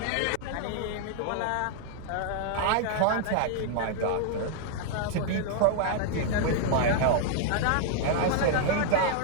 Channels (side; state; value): both; different; correlation -0.01